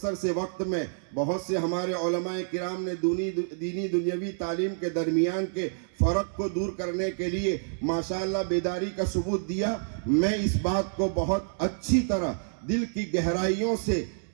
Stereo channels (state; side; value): silent; left; 59 dB below the other